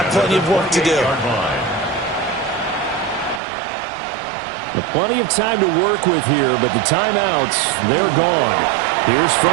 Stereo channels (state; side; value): drops out; left; at 3.4 s